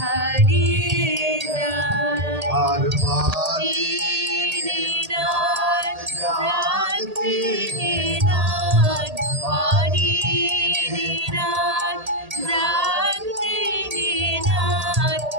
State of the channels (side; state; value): left; late; 1.8 ms